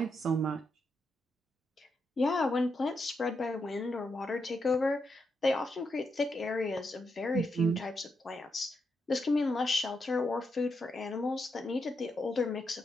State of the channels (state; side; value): normal; both; correlation 0.82